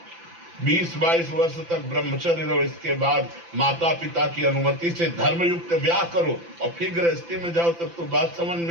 20-22 वर्ष तक ब्रह्मचर्य रहो, इसके बाद माता पिता की अनुमति से धर्मयुक्त ब्याह करो और फिर गृहस्थी में जाओ, तब तो बात समझ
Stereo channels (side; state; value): left; late; 5.9 ms